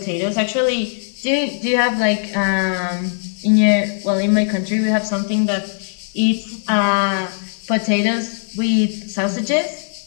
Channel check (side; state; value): right; silent; 57 dB below the other